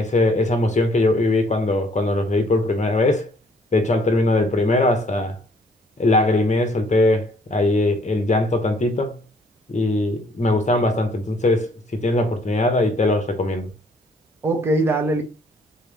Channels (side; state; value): both; normal; correlation 0.63